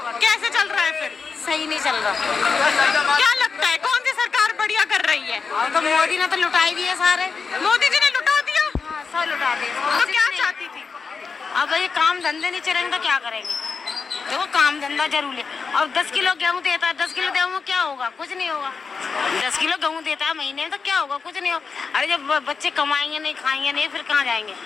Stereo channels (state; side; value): quieter; right; 5.2 dB